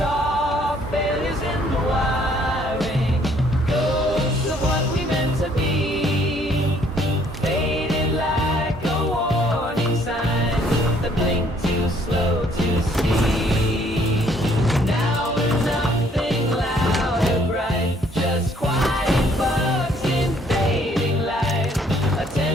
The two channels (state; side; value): normal; both; correlation 0.63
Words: failures in the wiring, ghosts of what we meant to be, faded like a warning sign that blinked too slow to see. Now we're nothing loud or bright, just quiet bugs in fading light, a